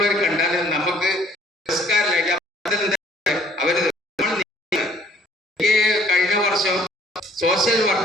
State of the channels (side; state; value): both; normal; correlation 0.59